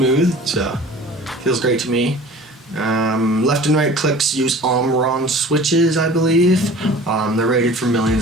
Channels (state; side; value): normal; both; correlation 0.43